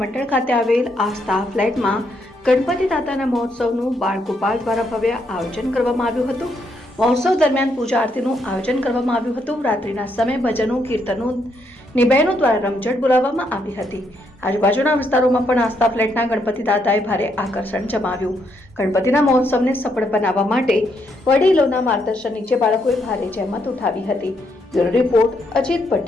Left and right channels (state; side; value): normal; both; correlation 0.76